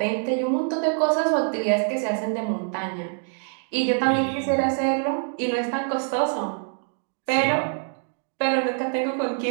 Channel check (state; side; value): silent; left; 62 dB below the other